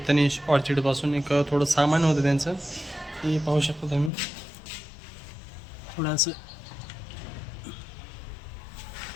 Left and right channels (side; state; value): right; drops out; at 4.1 s